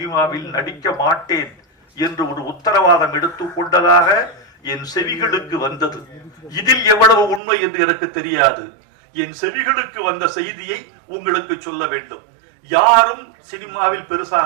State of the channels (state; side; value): drops out; left; at 7.4 s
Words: நடிக்க மாட்டேன் என்று ஒரு உத்தரவாதம் எடுத்துக் கொண்டதாக என் செவிகளுக்கு வந்தது. இதில் எவ்வளவு உண்மை என்று எனக்கு தெரியாது. என் செவிகளுக்கு வந்த செய்தியை உங்களுக்கு சொல்ல வேண்டும். யாரும் சினிமாவில்